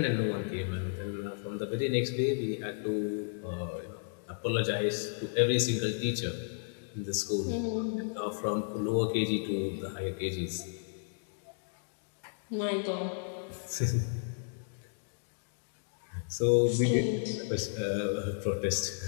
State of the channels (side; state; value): right; silent; digital silence